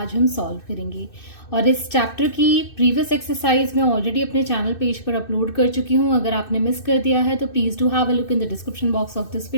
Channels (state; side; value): late; right; 2.6 ms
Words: हम सॉल्व करेंगे। और इस चैप्टर की प्रीवियस एक्सरसाइज मैं ऑलरेडी अपने चैनल पेज पर अपलोड कर चुकी हूँ। अगर आपने मिस कर दिया है तो please do have a look in the description box of this